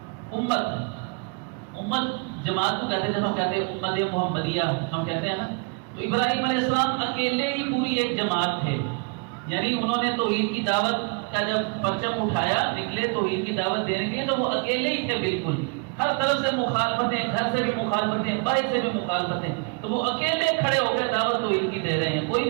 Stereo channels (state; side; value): quieter; left; 32.6 dB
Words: امت جماعت کو کہتے ہیں، جب ہم کہتے ہیں امت محمدیہ ہم کہتے ہیں نا، تو ابراہیم علیہ السلام اکیلے ہی پوری ایک جماعت تھے. یعنی انہوں نے توحید کی دعوت کا جب پرچم اٹھایا نکلے توحید کی دعوت دینے کے لیے، تو وہ اکیلے ہی تھے بالکل، ہر طرف سے مخالفتیں، گھر سے بھی مخالفتیں، باہر سے بھی مخالفتیں، تو وہ اکیلے کھڑے ہو کے دعوت توحید کی دے رہے ہیں، کوئی